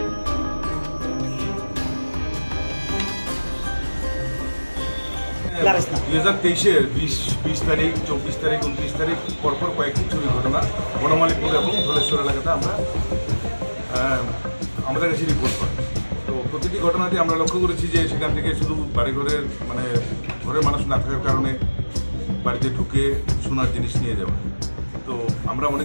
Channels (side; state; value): both; inverted; correlation -1.00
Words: তেইশের 20 তারিখ 24 তারিখ 29 তারিখ পরপর কয়েকটি চুরি ঘটনা বনমালীপুর এবং ধলেশ্বর এলাকাতে আমাদের কাছে রিপোর্ট করি। তো প্রতিটি ঘটনাতে আমরা লক্ষ্য করেছি যে সেখান থেকে শুধু বাড়িঘরের ঘরের মানুষ না থাকার কারণে বাড়িতে ঢুকে সোনার জিনিস নিয়ে যাওয়া। তো আমরা